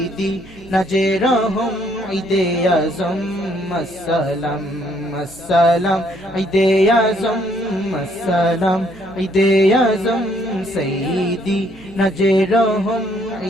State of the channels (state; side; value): noise; right; hum, 22 dB below the sound